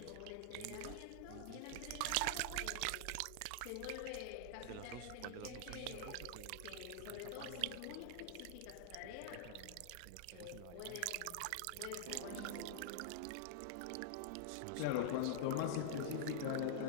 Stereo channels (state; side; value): different; both; correlation -0.01